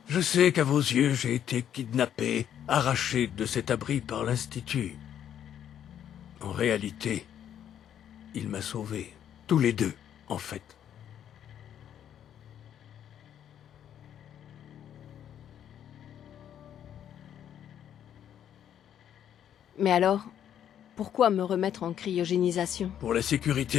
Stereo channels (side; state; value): right; quieter; 9.9 dB